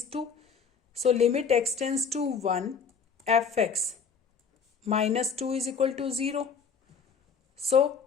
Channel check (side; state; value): right; quieter; 5.9 dB